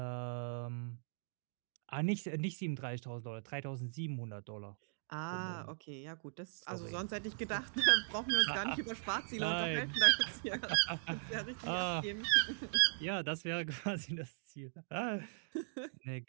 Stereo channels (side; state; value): left; silent; digital silence